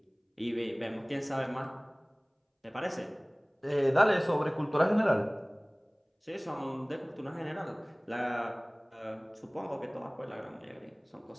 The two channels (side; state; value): both; identical; correlation 1.00